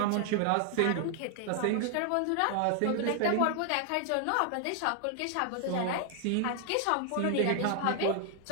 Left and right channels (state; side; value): different; both; correlation 0.00